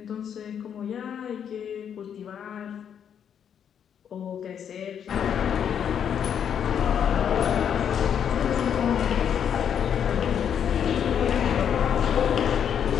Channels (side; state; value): right; quieter; 8.4 dB